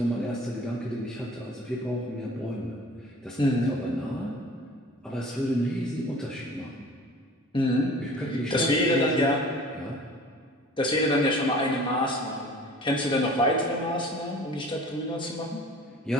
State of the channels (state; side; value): normal; both; correlation 0.45